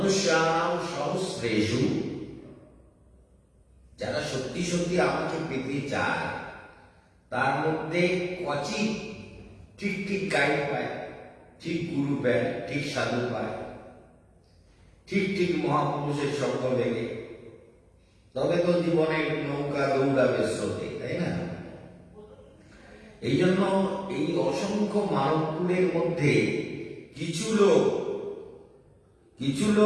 সহস্রেষু, যারা সত্যি সত্যি আমাকে পেতে চায় তার মধ্যে কচিৎ ঠিক ঠিক গাইড পায়, ঠিক গুরু পায়, ঠিক সাধু পায়, ঠিক ঠিক মহাপুরুষের সঙ্গ লেগে, তবে তো জীবনের নৌকা দৌড়াবে স্রোতে, তাই না? এই জন্য এই অসংখ্য মানবকুলের মধ্যে কিছু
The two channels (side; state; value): both; identical; correlation 1.00